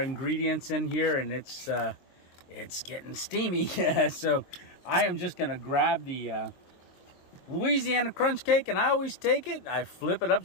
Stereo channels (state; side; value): late; right; 22 ms